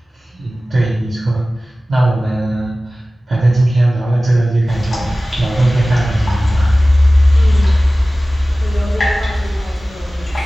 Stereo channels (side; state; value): both; normal; correlation 0.97